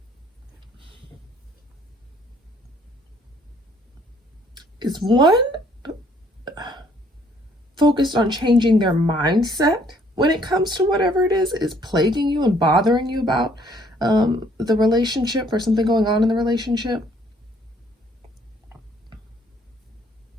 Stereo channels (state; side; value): normal; both; correlation 0.63